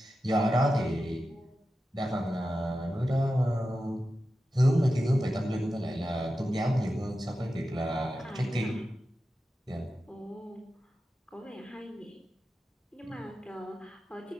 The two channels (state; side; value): normal; both; correlation 0.92